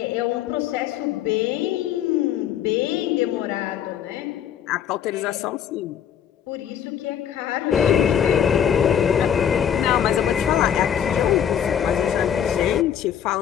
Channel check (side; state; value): right; quieter; 9.2 dB